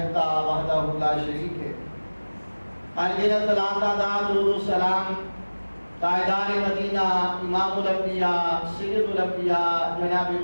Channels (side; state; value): both; inverted; correlation -1.00